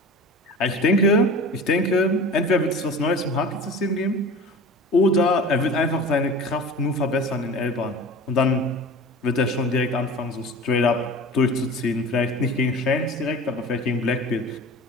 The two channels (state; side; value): normal; both; correlation 0.37